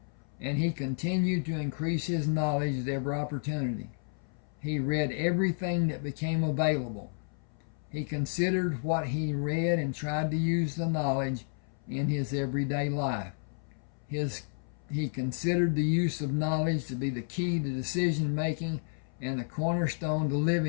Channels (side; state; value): right; silent; 57 dB below the other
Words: and he continued to increase his knowledge at every opportunity. He read everything that became available. He considered what he read and tried to use the knowledge in his everyday life. He considered the use of knowledge to be the key to decision making and the cornerstone to